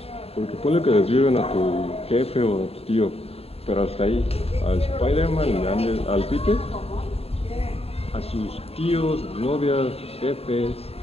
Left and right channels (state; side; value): late; right; 0.29 ms